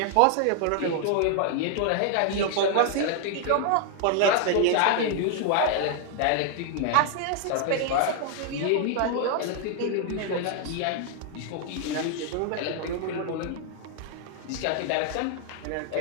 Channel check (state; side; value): different; both; correlation 0.00